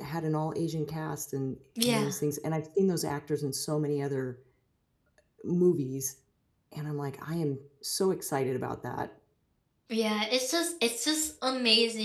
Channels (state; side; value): identical; both; correlation 1.00